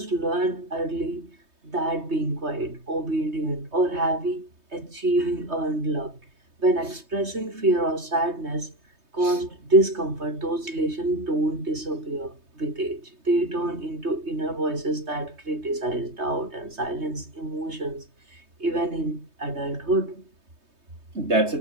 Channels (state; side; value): late; left; 3.2 ms